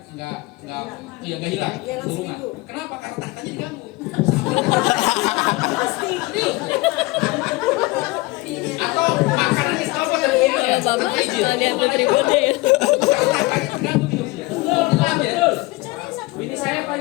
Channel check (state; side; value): quieter; right; 22.3 dB